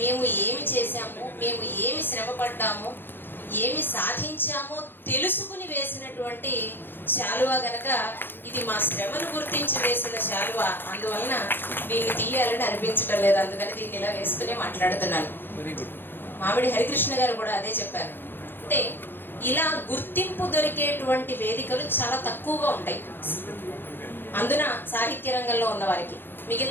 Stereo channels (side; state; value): right; late; 0.099 ms